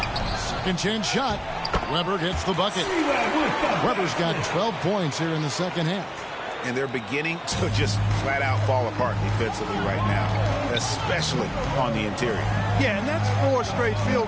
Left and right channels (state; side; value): identical; both; correlation 1.00